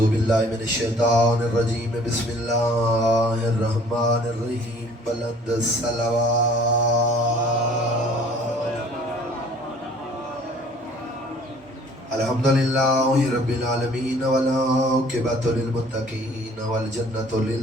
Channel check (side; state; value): both; normal; correlation 0.54